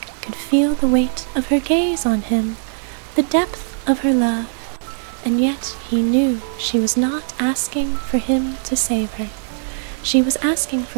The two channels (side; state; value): left; silent; digital silence